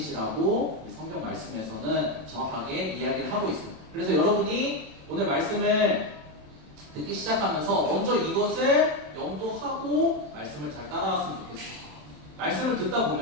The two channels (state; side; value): late; left; 27 ms